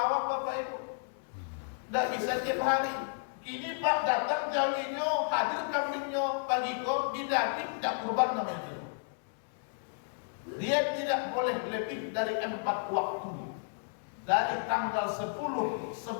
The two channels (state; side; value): silent; right; digital silence